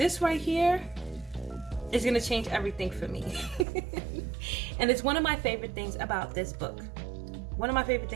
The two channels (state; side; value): drops out; left; at 3.7 s